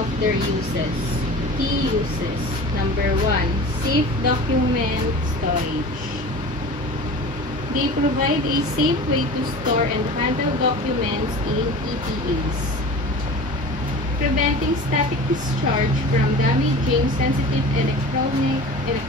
their uses. Key uses. Number 1. Safe document storage. They provide a safe way to store and handle documents in EPAs, preventing static discharge from damaging sensitive electronic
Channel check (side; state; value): both; normal; correlation 0.37